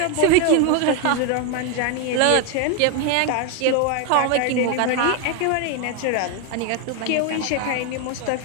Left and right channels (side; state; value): both; different; correlation 0.01